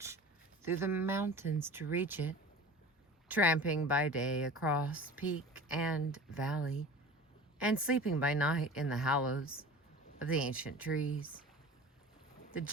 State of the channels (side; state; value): both; normal; correlation 0.38